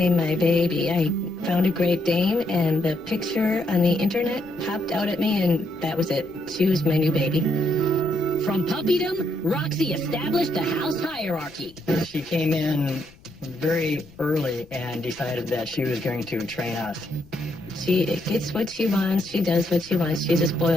my baby. I found a Great Dane, and the picture on the internet popped out at me, and that was it. She was my new baby. From puppydom, Roxy established a house hierarchy. She came in very early and decided that she was going to train us. She gets what she wants. She does what she wants. She's a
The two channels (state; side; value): noise; left; rumble, 25 dB below the sound